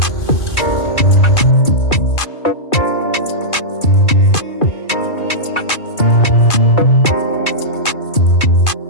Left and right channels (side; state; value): right; late; 2.4 ms